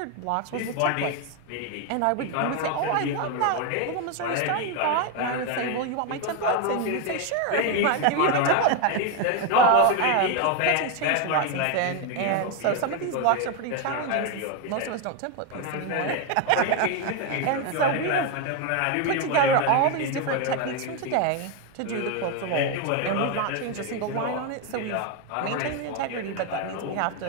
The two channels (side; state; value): both; different; correlation 0.02